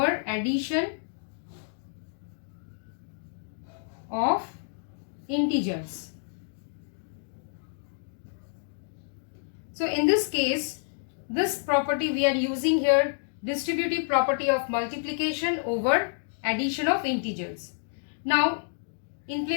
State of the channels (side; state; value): right; silent; digital silence